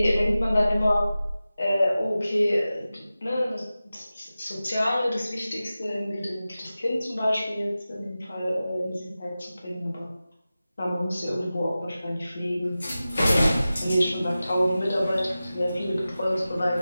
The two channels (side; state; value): both; inverted; correlation -0.95